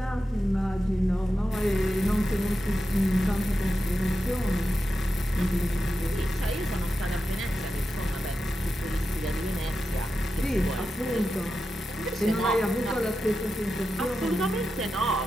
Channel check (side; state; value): both; normal; correlation 0.90